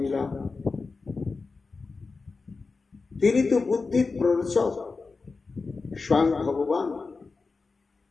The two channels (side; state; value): right; quieter; 4.2 dB